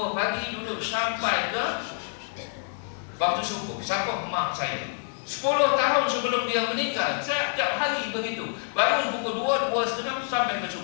2 pagi duduk sampai ke waktu subuh. Siapa? Mak saya. 10 tahun sebelum dia meninggal, setiap hari begitu. Bangun pukul 2, 2:30 sampai ke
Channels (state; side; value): silent; right; 60 dB below the other